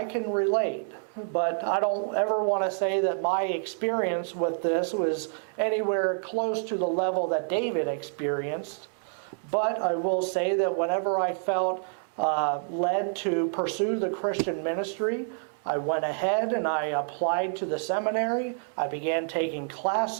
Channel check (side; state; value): left; silent; digital silence